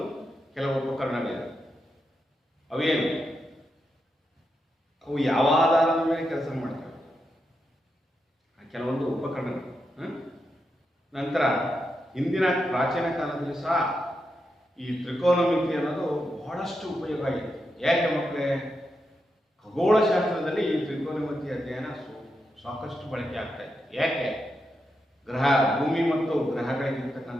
ಕೆಲವು ಉಪಕರಣಗಳಿವೆ. ಅವೇನು? ಅವು ಯಾವ ಆಧಾರದ ಮೇಲೆ ಕೆಲಸ ಮಾಡ್ತವೆ, ಕೆಲವೊಂದು ಉಪಕರಣಗಳು. ನಂತರ ಹಿಂದಿನ ಪ್ರಾಚೀನ ಕಾಲದಲ್ಲಿ ಸಹ ಈ ತ್ರಿಕೋನಮಿತಿ ಅನ್ನೋದು ಬಹಳಷ್ಟು ಉಪಯೋಗ ಆಗಿದೆ. ಯಾಕೆ ಮಕ್ಕಳೇ? ಖಗೋಳಶಾಸ್ತ್ರದಲ್ಲಿ ಈ ತ್ರಿಕೋನಮಿತಿ ಅಧ್ಯಯನ ಸಾಕಷ್ಟು ಬಳಕೆ ಆಗ್ತಾ ಇದೆ. ಯಾಕೆ? ಭೂಮಿ ಮತ್ತು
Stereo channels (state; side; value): normal; both; correlation 0.85